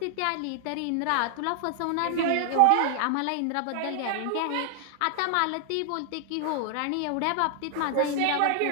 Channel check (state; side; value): different; both; correlation 0.00